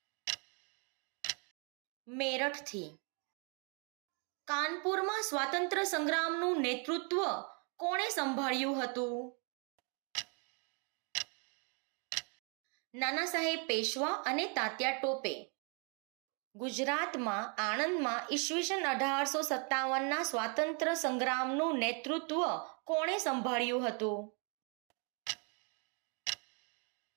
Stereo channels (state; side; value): quieter; left; 37.2 dB